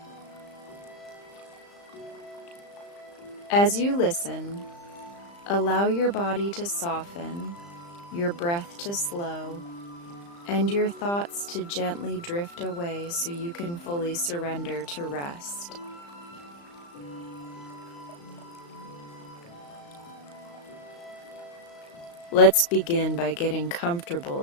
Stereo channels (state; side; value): late; right; 35 ms